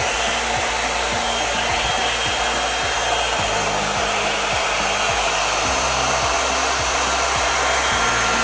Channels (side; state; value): both; identical; correlation 1.00